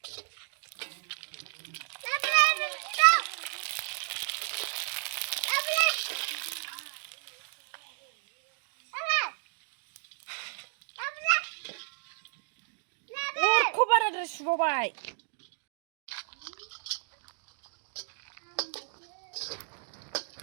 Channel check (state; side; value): silent; left; 56 dB below the other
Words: Kobar ada subabai.